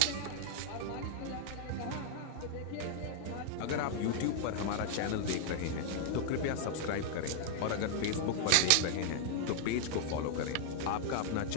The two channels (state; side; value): different; both; correlation -0.01